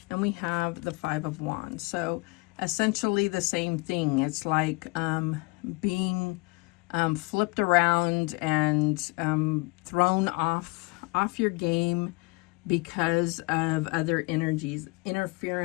And we have the Five of Wands. So essentially the same thing. It's like being flipped around and thrown off your game because of other energies.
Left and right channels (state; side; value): quieter; right; 27.2 dB